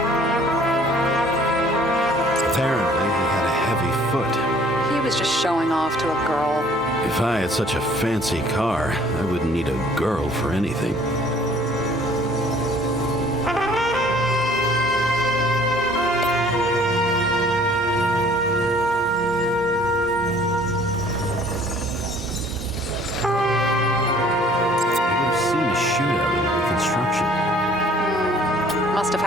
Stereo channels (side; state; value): both; normal; correlation 0.55